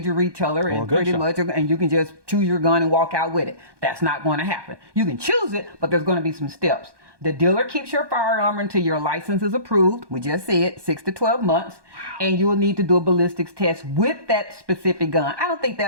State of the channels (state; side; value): late; left; 1.2 ms